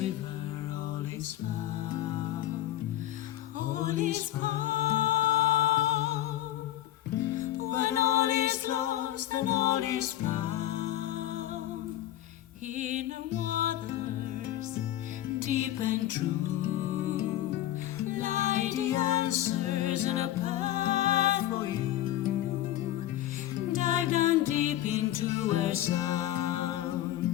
all is found. All is found. When all is lost and all is found, in the waters deep and true lie the answers and a path for you. Dive down deep into her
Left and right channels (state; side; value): quieter; right; 13.5 dB